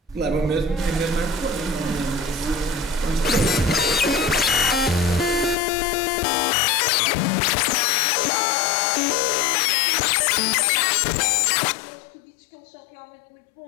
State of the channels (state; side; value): drops out; right; at 5.6 s